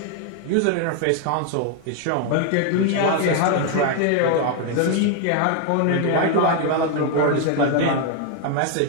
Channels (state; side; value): different; both; correlation 0.01